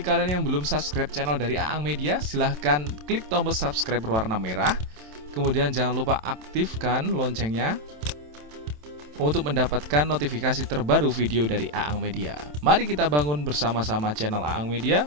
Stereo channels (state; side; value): late; left; 27 ms